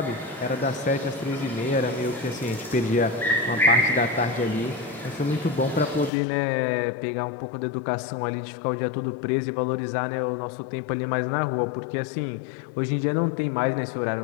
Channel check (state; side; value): drops out; right; at 6.1 s